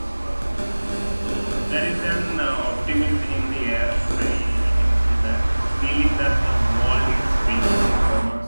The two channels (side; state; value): both; inverted; correlation -1.00